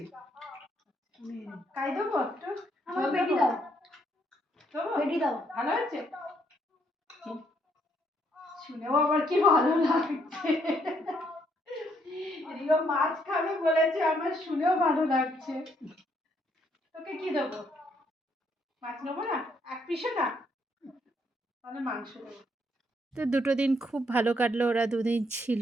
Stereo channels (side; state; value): both; normal; correlation 0.71